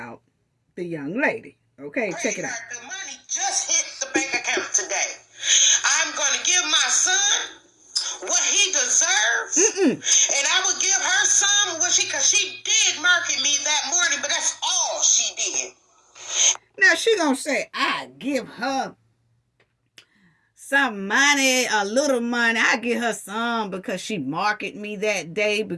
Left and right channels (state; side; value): identical; both; correlation 1.00